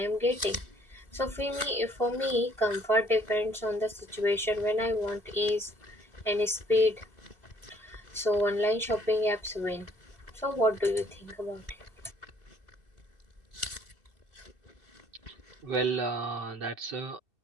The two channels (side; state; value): left; late; 2.7 ms